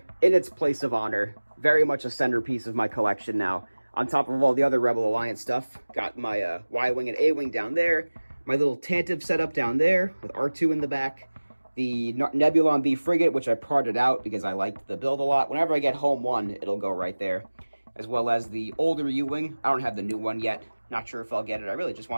in its place of honor. Very much a centerpiece of my collection now. On top of all the other Rebel Alliance stuff, got my Y-Wing and A-Wing down there. My little Tantive setup down there with R2 in the back. The Nebulon B frigate, which I parted out because I liked the build a lot. Whenever I get home one, it'll go right there. As well as the older U-Wing. I don't have the new one yet. Not sure if I'll get it. I really just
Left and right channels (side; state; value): both; inverted; correlation -1.00